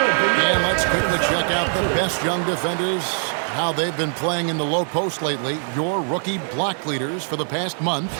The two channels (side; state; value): left; silent; 64 dB below the other